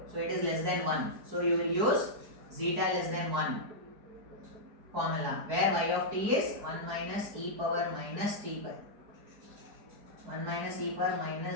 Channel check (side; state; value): left; late; 4.8 ms